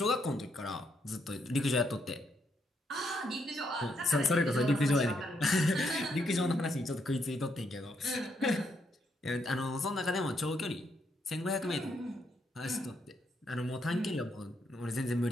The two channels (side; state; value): both; normal; correlation 0.76